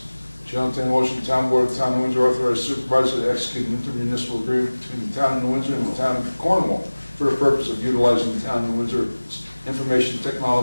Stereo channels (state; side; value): inverted; both; correlation -1.00